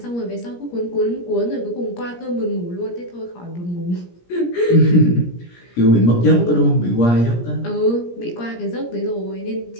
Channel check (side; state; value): right; late; 17 ms